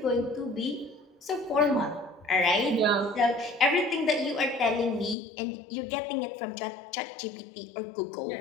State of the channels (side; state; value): right; drops out; at 5.2 s